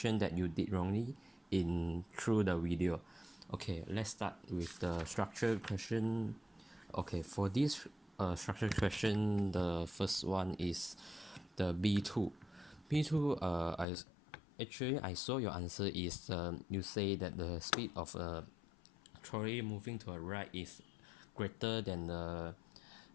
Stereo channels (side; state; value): right; drops out; at 13.9 s